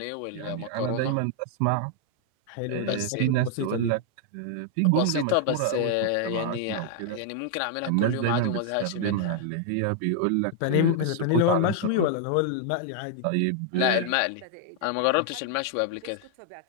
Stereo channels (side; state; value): both; different; correlation 0.00